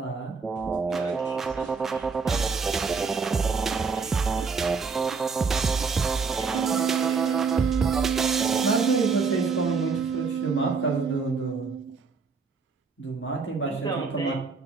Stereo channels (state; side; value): quieter; left; 5.0 dB